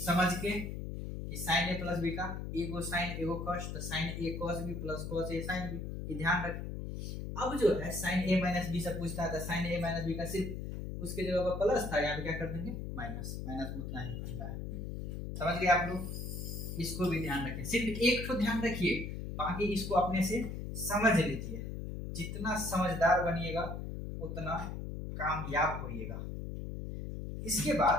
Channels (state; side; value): noise; left; hum, 6 dB below the sound